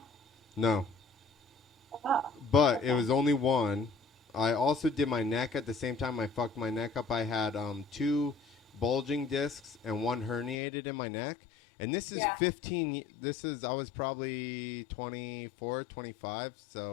No. Oh. But it was only one. I also did my neck at the same time. I fucked my neck up. I had 2 bulging discs and 1 herniated in my neck. And this is 15. I was probably 24, 25.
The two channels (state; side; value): drops out; right; at 10.6 s